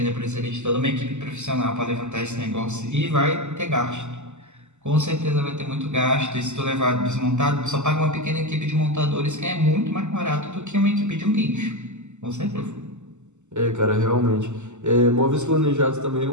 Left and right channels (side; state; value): left; late; 0.83 ms